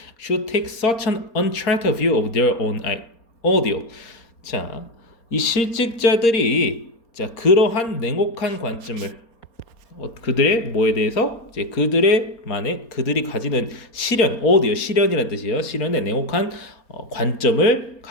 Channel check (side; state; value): right; late; 4.3 ms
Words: should take such an uncharted view of their own audio. 자, 이 실직자들이 자, 그러한 냉혹한 관점을 그들의 뭐에 대해서 이제 그들이 가지는 시련이라는 뜻이에요. 시련의 냉혹한 관점을